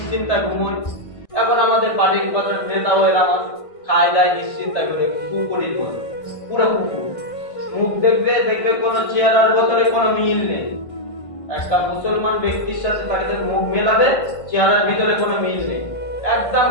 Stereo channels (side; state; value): right; late; 1.5 ms